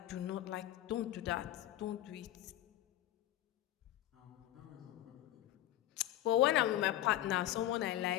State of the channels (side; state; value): right; quieter; 13.7 dB